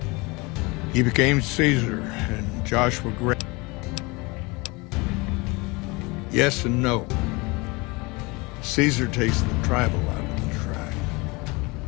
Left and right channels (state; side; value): quieter; right; 25.8 dB